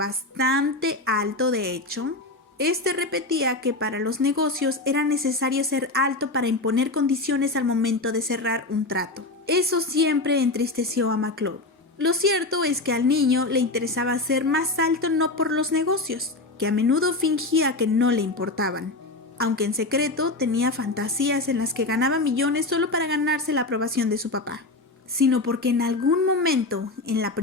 alto de hecho, este repetía que para los negocios era necesario ser alto para imponer condiciones al momento de cerrar un trato. Eso siempre entristeció a Maclovio. Lo cierto es que al niño le interesaba ser más alto no por los negocios, que a menudo fingía que no le importaban, aunque en secreto tenía fantasías en las que ganaba millones solo para ganarse la aprobación de su papá, sino porque en algún momento en la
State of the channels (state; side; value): quieter; right; 3.1 dB